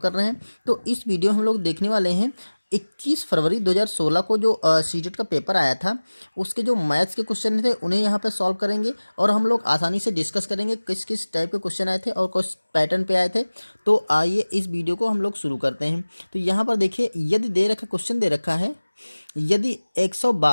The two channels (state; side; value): inverted; both; correlation -1.00